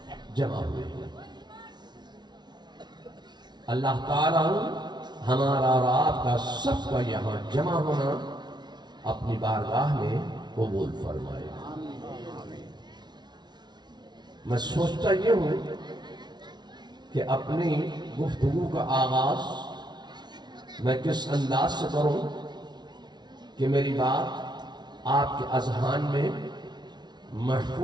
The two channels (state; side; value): late; left; 0.20 ms